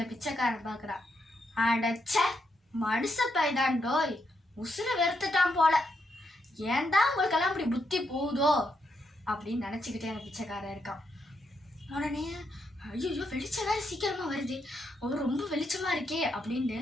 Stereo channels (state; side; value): normal; both; correlation 0.80